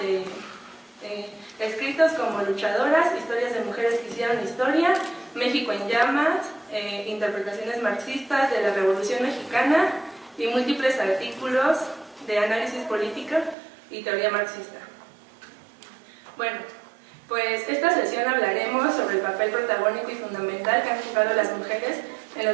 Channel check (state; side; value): drops out; left; at 13.6 s